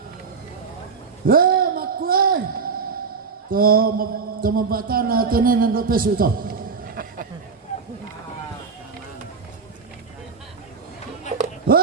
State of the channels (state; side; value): quieter; left; 5.2 dB